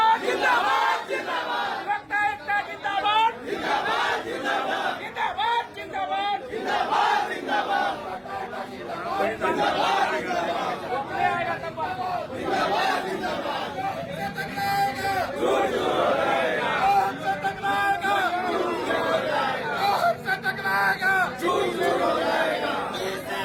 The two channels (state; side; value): identical; both; correlation 1.00